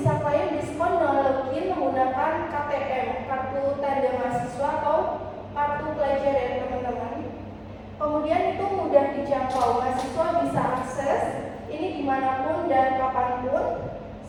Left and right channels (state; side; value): identical; both; correlation 1.00